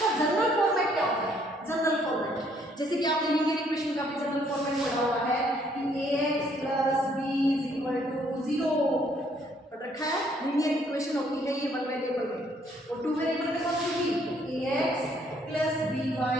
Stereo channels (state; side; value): normal; both; correlation 0.66